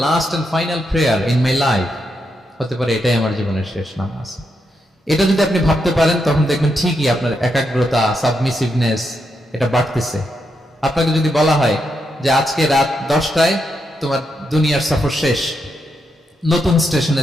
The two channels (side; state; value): both; normal; correlation 0.82